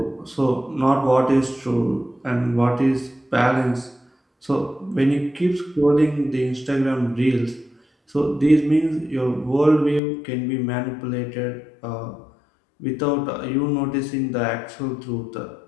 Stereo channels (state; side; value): drops out; right; at 10.0 s